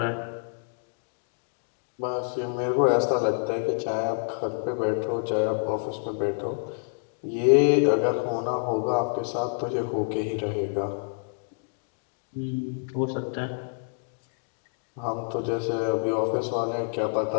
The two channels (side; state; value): right; silent; digital silence